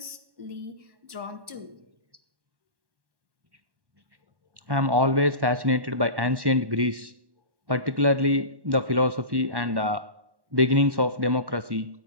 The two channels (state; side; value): late; left; 1.1 ms